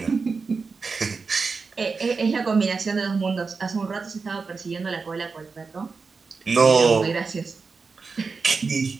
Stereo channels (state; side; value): quieter; left; 4.7 dB